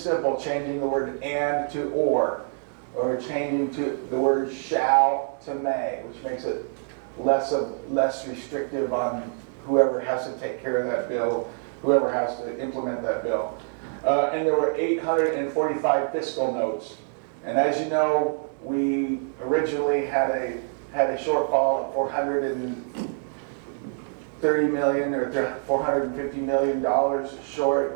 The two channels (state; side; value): silent; left; digital silence